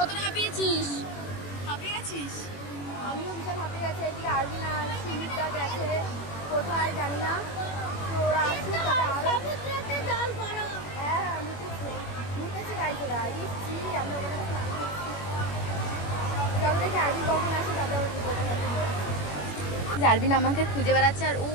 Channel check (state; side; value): late; right; 21 ms